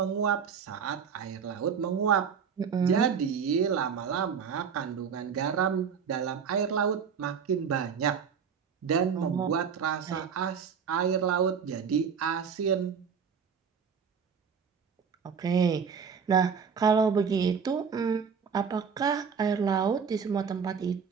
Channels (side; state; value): left; quieter; 6.6 dB